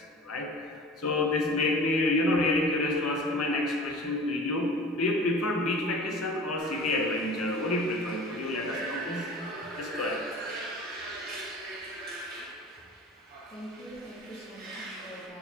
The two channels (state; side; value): normal; both; correlation 0.40